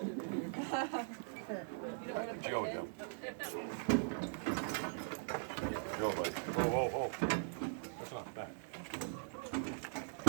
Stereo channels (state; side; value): silent; left; digital silence